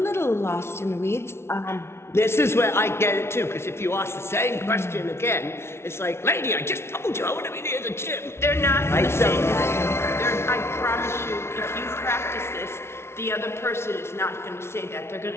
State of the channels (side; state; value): right; late; 0.12 ms